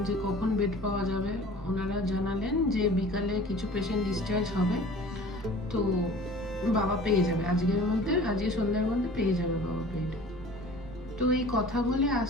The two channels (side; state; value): left; noise; rumble, 19 dB below the sound